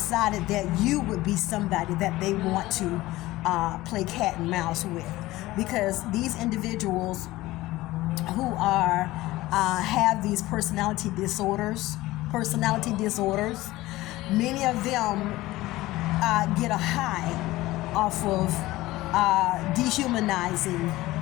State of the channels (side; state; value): right; quieter; 17.9 dB